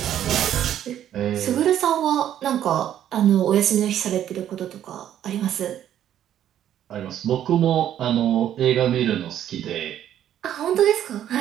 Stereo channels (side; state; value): left; quieter; 10.9 dB